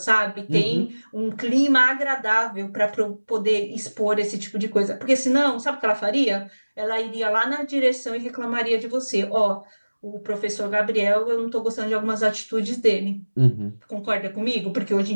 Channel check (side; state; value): both; inverted; correlation -1.00